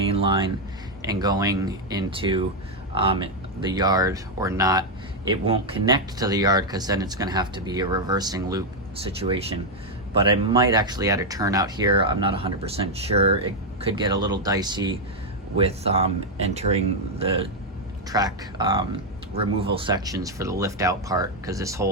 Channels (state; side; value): normal; both; correlation 0.01